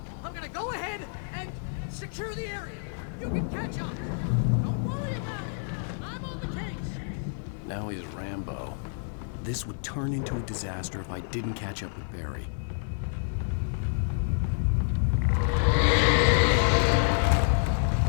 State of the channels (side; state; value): right; silent; digital silence